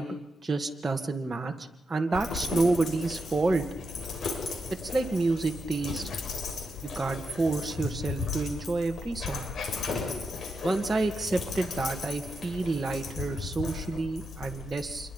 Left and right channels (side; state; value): both; normal; correlation 0.86